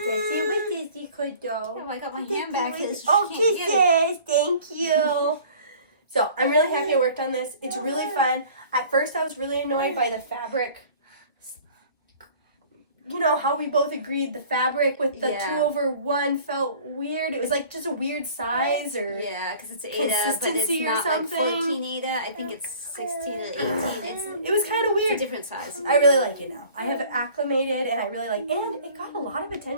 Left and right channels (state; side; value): inverted; both; correlation -0.48